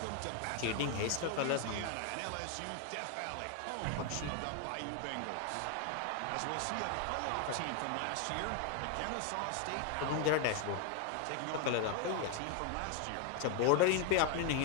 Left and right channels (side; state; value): both; different; correlation 0.01